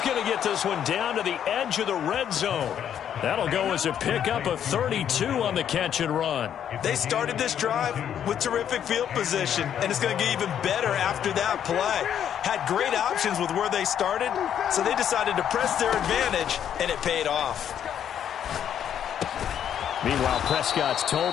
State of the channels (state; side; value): quieter; right; 9.4 dB